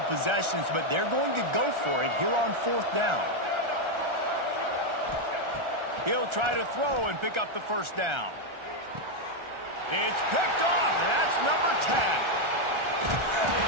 possessions, but they're going to go for it here on fourth down. He'll try to throw and pick up the first down. It's picked off, and that's number 10.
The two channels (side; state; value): left; late; 1.4 ms